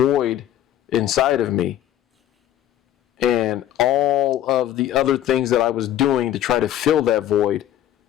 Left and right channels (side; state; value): right; quieter; 11.9 dB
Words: inside of me. And all of the other things that I was doing to try to fill that void